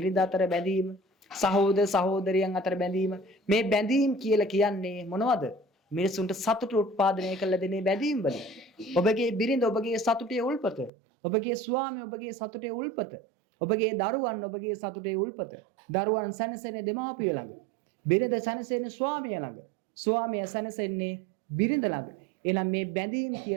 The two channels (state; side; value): drops out; left; at 10.9 s